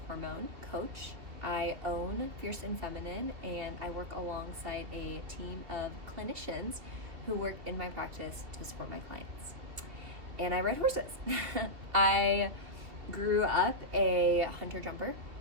hormone coach. I own Fierce and Feminine, and I work alongside a team of clinicians who work in my practice to support my clients. And I ride horses. I grew up a hunter-jumper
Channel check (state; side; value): late; left; 2.7 ms